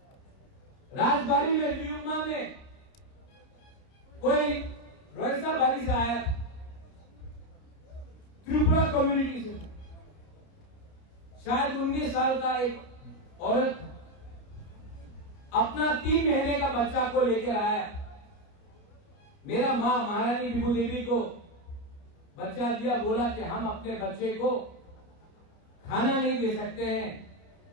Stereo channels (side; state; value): right; late; 29 ms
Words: राजबाड़ी में न्यूमा में कोई रोयसा बारी से आया, त्रिपुरा कम्युनिटी से, शायद 19 साल का एक औरत अपना 3 महीने का बच्चा को लेकर आया। मेरा मां महारानी विभू देवी को बच्चा दिया, बोला कि हम अपने बच्चे को खाना नहीं दे सकते हैं,